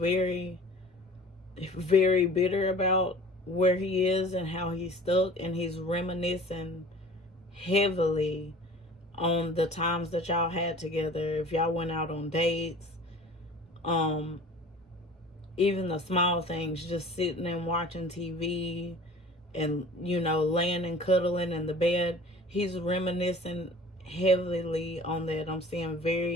very bitter about where he is and how he's stuck, and he's reminiscing heavily on the times that y'all had together. If y'all went out on dates, um, even the small things, just sitting and watching TV and, you know, laying and cuddling in the bed. He's reminiscing heavily on that. I'm seeing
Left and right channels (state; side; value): normal; both; correlation 0.44